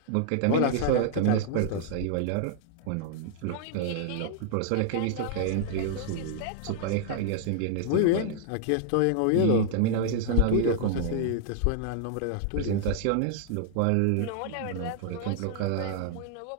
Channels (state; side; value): different; both; correlation -0.01